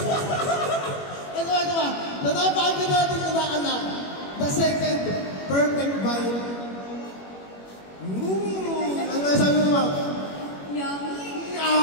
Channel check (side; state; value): right; late; 21 ms